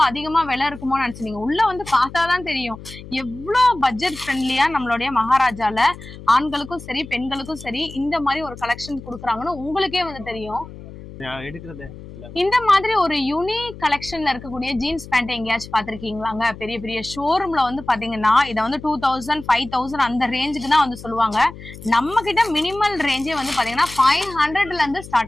அதிகமா விலை இருக்குமோ நினைச்சீங்க. உள்ள வந்து பார்த்தாதான் தெரியும் எவ்வளவு பட்ஜெட் ஃப்ரெண்ட்லியா நம்மளுடைய மகாராஜால ஆண்களுக்கும் சரி பெண்களுக்கும் சரி இந்த மாதிரி ஒரு கலெக்ஷன் கொடுக்குறாங்கன்னு உங்களுக்கே வந்து தெரியும். இந்த மாதிரி ஒரு யூனிக் கலெக்ஷன்ல இருக்கக்கூடிய ஜீன்ஸ் பேண்ட் எங்கேயாச்சும் பாத்திருக்கீங்களாங்க? பெரிய பெரிய ஷோரூம்ல வந்து பாத்தீங்கன்னா இதை வந்து 2000 5000 அந்த ரேஞ்சுக்கு தான் வந்து சொல்லுவாங்க. நம்ம கிட்ட மினிமல் ரேஞ்சே வந்து பாத்தீங்கன்னா 500ல இருந்து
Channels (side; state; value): left; noise; hum, 15 dB below the sound